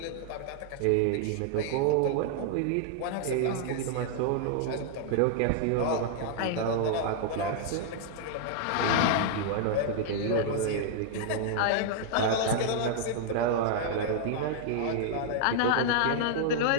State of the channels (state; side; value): different; both; correlation -0.01